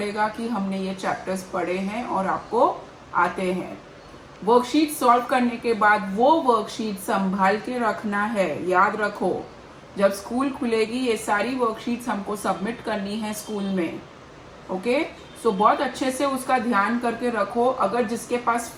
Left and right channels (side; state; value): both; identical; correlation 1.00